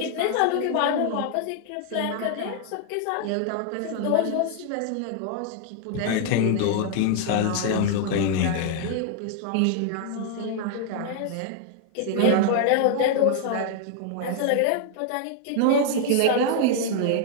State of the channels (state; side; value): different; both; correlation 0.00